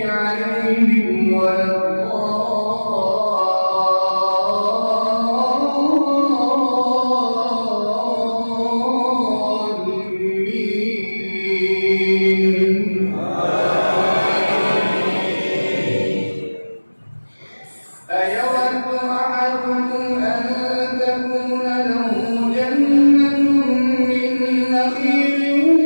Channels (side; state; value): both; inverted; correlation -1.00